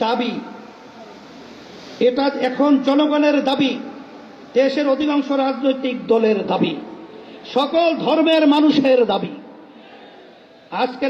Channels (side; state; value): both; identical; correlation 1.00